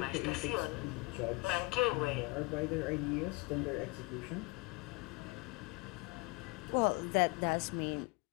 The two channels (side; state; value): right; quieter; 25.6 dB